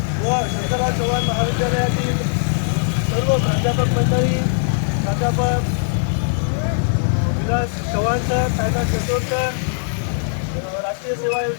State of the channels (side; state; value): right; silent; 61 dB below the other